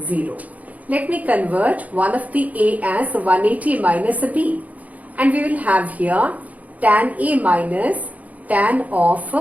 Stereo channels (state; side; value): late; left; 0.073 ms